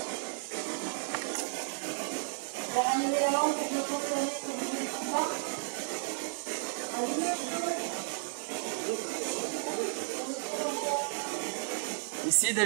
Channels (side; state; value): left; silent; digital silence